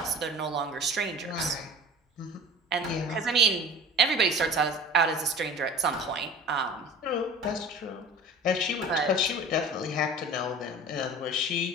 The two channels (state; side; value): normal; both; correlation 0.39